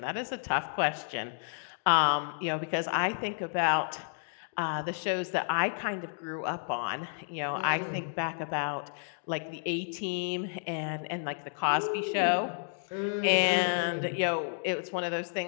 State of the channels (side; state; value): right; silent; digital silence